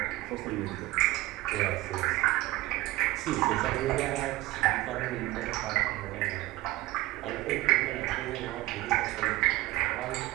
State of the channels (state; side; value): quieter; left; 17.9 dB